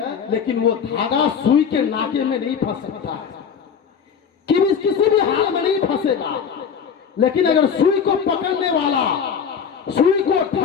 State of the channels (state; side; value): quieter; right; 7.0 dB